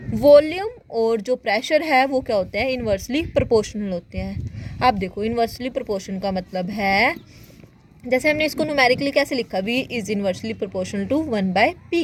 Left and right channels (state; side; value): identical; both; correlation 1.00